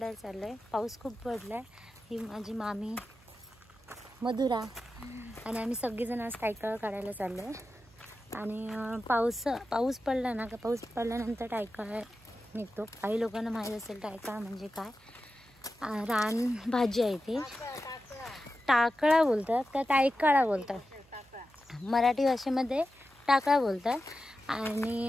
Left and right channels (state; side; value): noise; right; hum, 28 dB below the sound